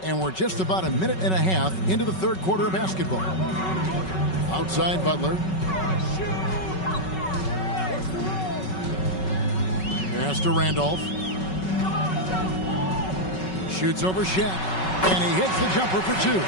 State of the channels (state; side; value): late; right; 5.3 ms